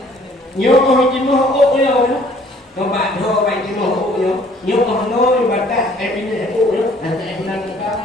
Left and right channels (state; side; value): normal; both; correlation 0.57